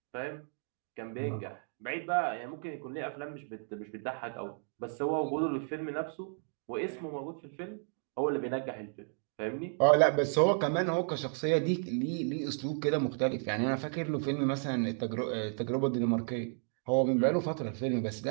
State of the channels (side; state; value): left; silent; 56 dB below the other